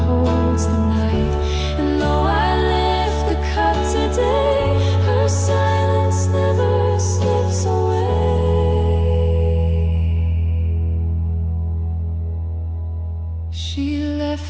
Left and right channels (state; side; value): identical; both; correlation 1.00